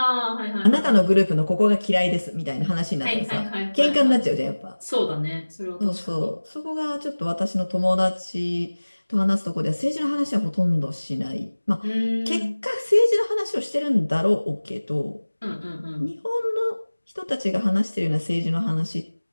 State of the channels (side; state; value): both; inverted; correlation -1.00